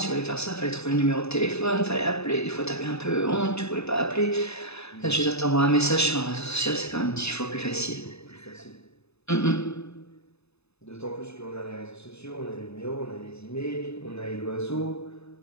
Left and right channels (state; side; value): late; right; 0.79 ms